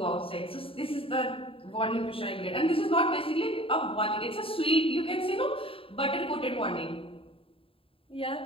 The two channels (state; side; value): late; right; 0.27 ms